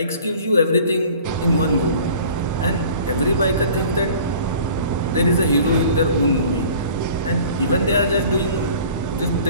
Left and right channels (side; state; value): both; inverted; correlation -0.47